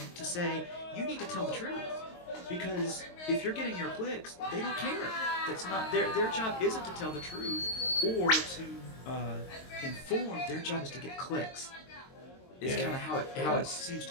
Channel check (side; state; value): right; late; 22 ms